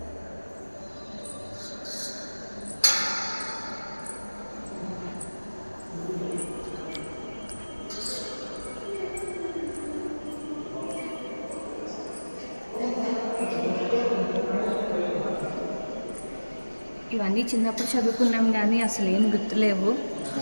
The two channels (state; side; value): inverted; both; correlation -1.00